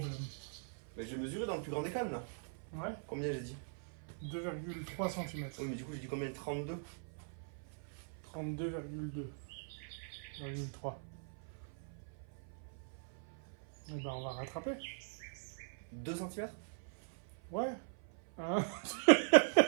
Mais j'ai mesuré dans le plus grand des calmes là. Ouais. Combien j'ai dit? 2,3 cm. Oui, mais du coup, j'ai dit combien? 32. 32,2,3. Eh ben, on va rattraper. 2 cm? Ouais. Hein.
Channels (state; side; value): silent; left; 51 dB below the other